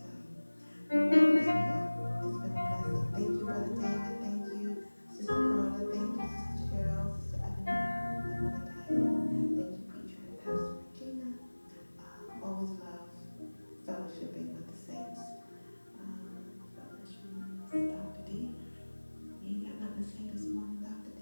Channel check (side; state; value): both; inverted; correlation -1.00